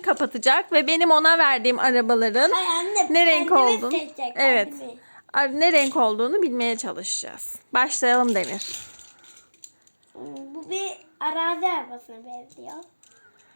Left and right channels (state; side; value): inverted; both; correlation -1.00